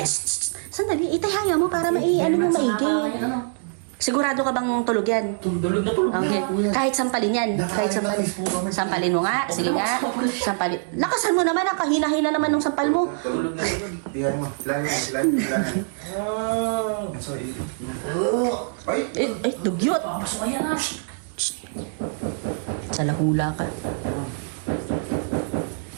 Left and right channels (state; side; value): silent; left; digital silence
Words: Sandali, itahanga mo para ano mo maigi. Sigurado ka bang tulog yan? Tulog na tulog Okay. na. Kahit sampalin yan. Kahit sampalin. Sampalin mo nga. Sige nga. Sampalin. Lakasan mo naman. Ang kahina-hina naman ng sampal mo. Tulog na. Tingnan mo. Silahin. Sorry. Ay! Ay, dugyot. Pasok ayan na. Sa lahula ka.